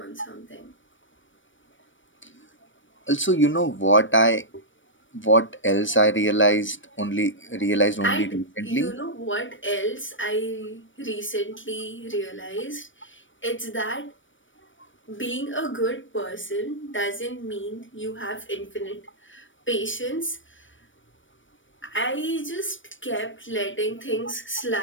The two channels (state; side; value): late; right; 0.56 ms